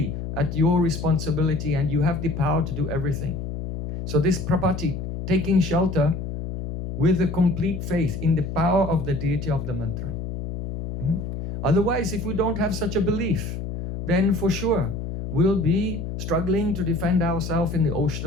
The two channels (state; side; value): noise; left; hum, 6 dB below the sound